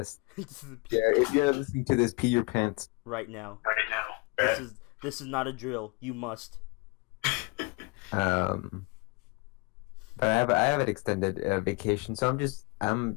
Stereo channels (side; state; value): right; quieter; 27.6 dB